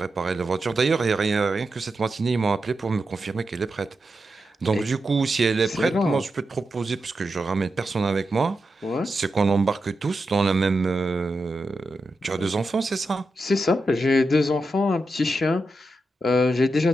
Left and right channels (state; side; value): normal; both; correlation 0.88